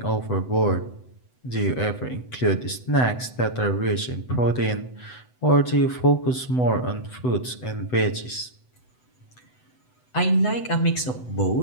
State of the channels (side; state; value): right; late; 8.0 ms